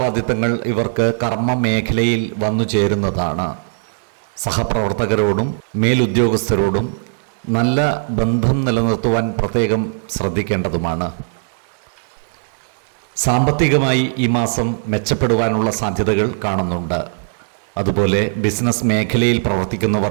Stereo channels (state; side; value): silent; left; 67 dB below the other